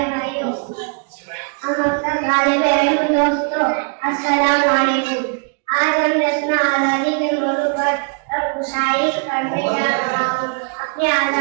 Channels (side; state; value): left; quieter; 38.5 dB